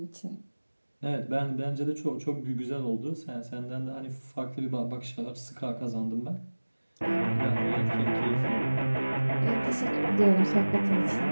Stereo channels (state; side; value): inverted; both; correlation -1.00